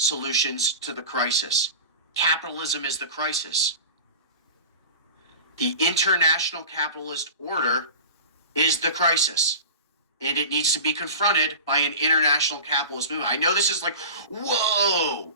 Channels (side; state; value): both; inverted; correlation -0.32